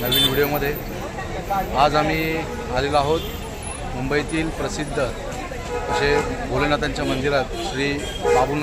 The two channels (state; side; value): identical; both; correlation 1.00